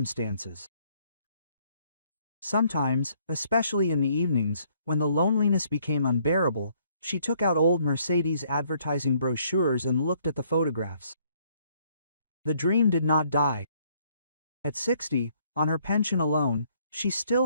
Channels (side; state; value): both; inverted; correlation -0.66